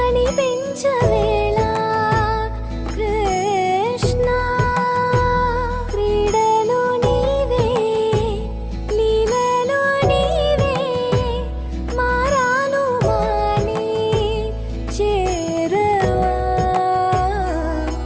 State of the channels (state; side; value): identical; both; correlation 1.00